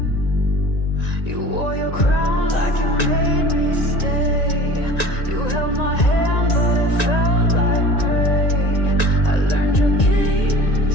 You wore your crown like you made me stay. You held my hand, but it felt like prey. I learned your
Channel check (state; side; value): late; right; 1.9 ms